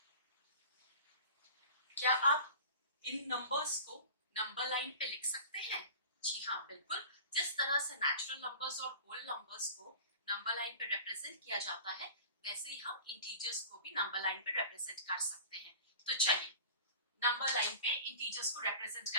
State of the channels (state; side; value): inverted; both; correlation -0.38